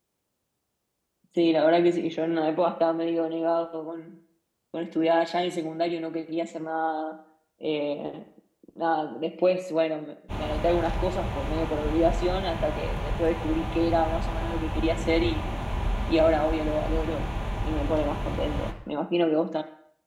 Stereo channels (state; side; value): identical; both; correlation 1.00